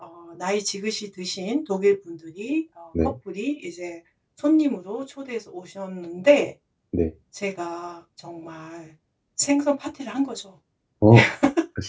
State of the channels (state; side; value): identical; both; correlation 1.00